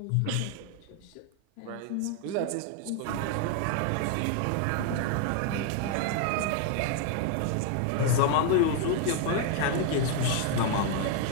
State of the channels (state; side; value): different; both; correlation 0.00